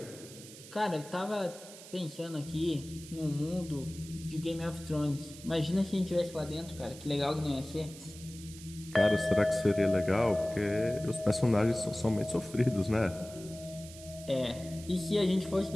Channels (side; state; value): right; noise; hiss, 16 dB below the sound